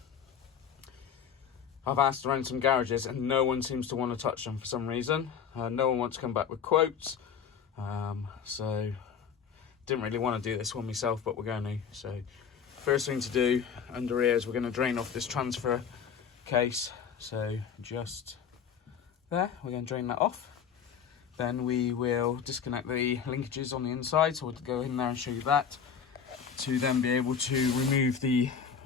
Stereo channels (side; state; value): right; quieter; 7.3 dB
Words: I've asked around some garages and no one seems to want to touch them for some reason. No one wants to come back with quotes. So didn't really want to do this one myself, but we're going to. So first thing to do under here is we're going to drain off this transfer case. So just there, we're going to drain that off. Then we will disconnect the linkages on the inside, so we'll go in there and show you that, to then be able to remove the